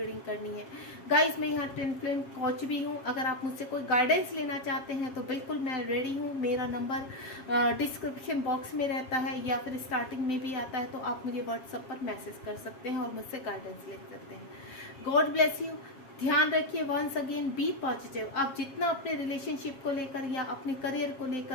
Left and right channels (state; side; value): late; right; 7.3 ms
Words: करनी है। गाइस, मैं यहाँ ट्विन फ्लेम कोच भी हूँ। अगर आप मुझसे कोई गाइडेंस लेना चाहते हैं तो बिल्कुल मैं रेडी हूँ। मेरा नंबर डिस्क्रिप्शन बॉक्स में रहता है या फिर स्टार्टिंग में भी आता है, तो आप मुझे व्हाट्सएप पर मैसेज कर सकते हैं और मुझसे गाइडेंस ले सकते हैं। God bless you. ध्यान रखिए, वंस अगेन बी पॉजिटिव। आप जितना अपने रिलेशनशिप को लेकर या अपने करियर को